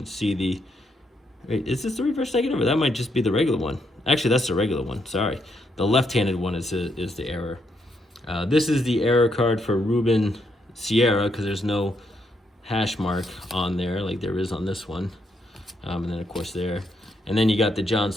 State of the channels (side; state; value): both; normal; correlation 0.77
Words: see, is this the reverse negative, or that might just be the regular one? Actually, that's the regular one. Sorry, the left-handed one is the error. This is the error card for Ruben Sierra because there's no hash mark on there like there is on this one, and then of course there, and then you got the John